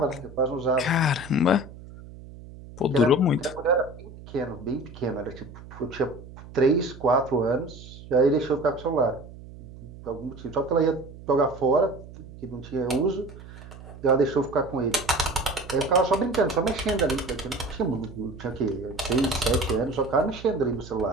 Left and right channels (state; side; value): noise; right; hum, 16 dB below the sound